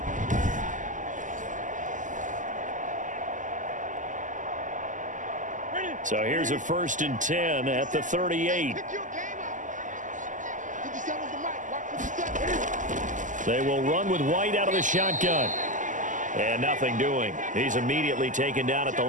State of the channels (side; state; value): left; late; 0.37 ms